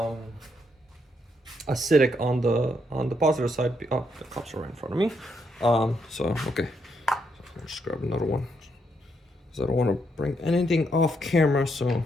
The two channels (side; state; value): both; normal; correlation 0.76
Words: acidic on the positive side. Oh, the cups are right in front of me. So okay, so I'll just grab another one because I don't want to bring anything off camera. So